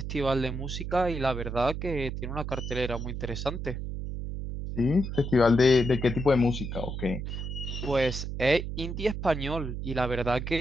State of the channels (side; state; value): right; noise; hum, 5 dB below the sound